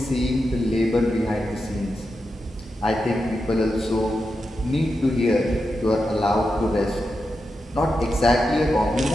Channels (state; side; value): normal; both; correlation 0.88